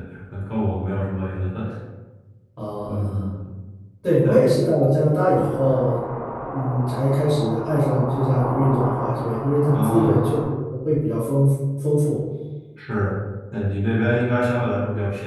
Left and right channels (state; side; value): identical; both; correlation 1.00